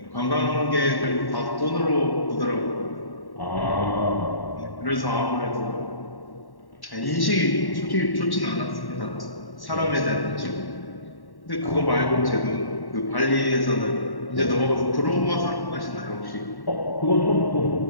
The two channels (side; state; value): right; late; 1.1 ms